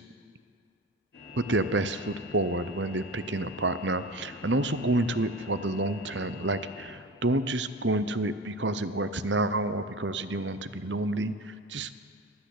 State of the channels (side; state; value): both; normal; correlation 0.32